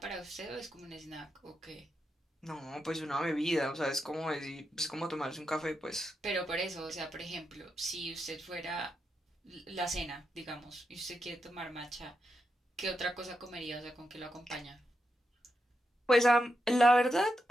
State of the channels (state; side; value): normal; both; correlation 0.85